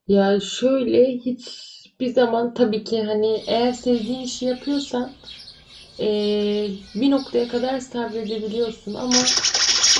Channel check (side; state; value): both; identical; correlation 1.00